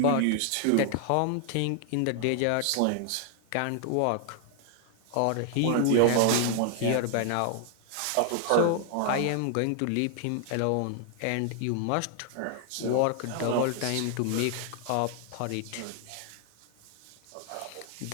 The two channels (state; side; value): different; both; correlation 0.00